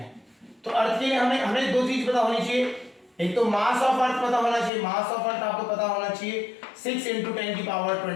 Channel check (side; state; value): right; drops out; at 4.7 s